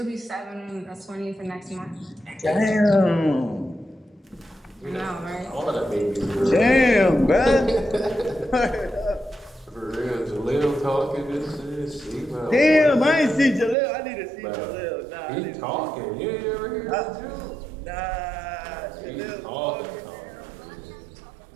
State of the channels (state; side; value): drops out; left; at 13.8 s